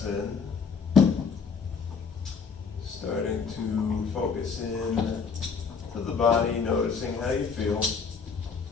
in. Starting to focus in to the body, noticing how you feel.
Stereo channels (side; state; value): right; quieter; 5.5 dB